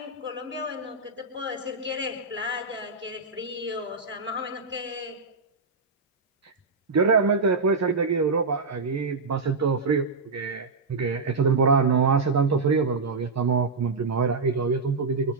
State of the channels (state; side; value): quieter; left; 4.1 dB